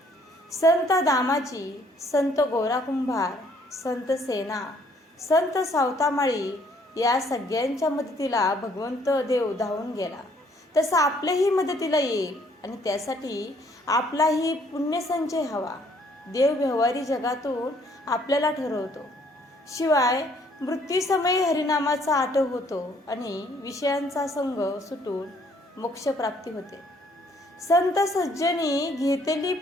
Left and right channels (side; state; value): both; normal; correlation 0.64